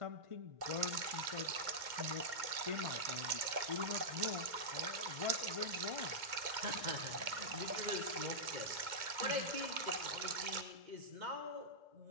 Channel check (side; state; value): left; late; 2.1 ms